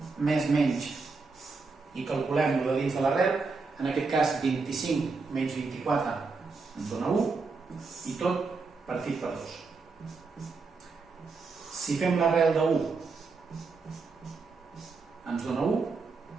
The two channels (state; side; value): quieter; left; 4.3 dB